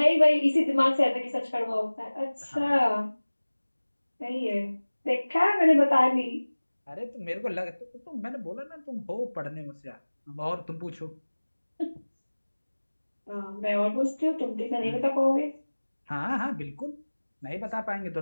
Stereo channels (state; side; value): inverted; both; correlation -1.00